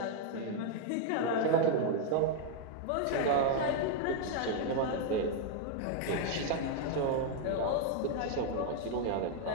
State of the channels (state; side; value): different; both; correlation 0.00